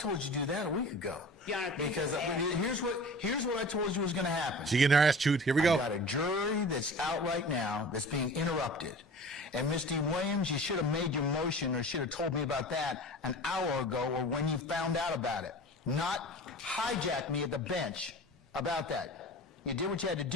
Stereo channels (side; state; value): both; normal; correlation 0.38